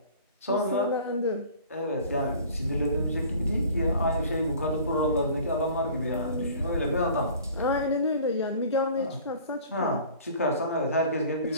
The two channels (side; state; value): both; inverted; correlation -0.47